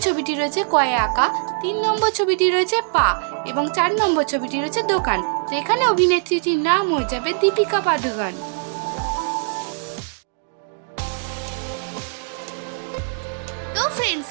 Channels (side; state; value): left; silent; digital silence